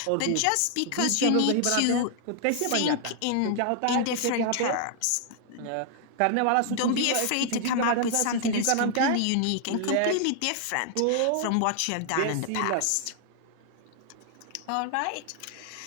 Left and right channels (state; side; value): different; both; correlation 0.00